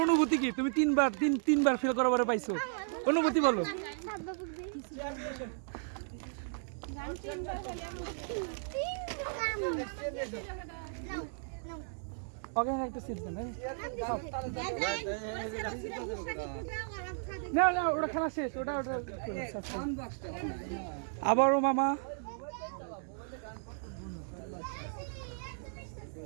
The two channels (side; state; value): left; silent; digital silence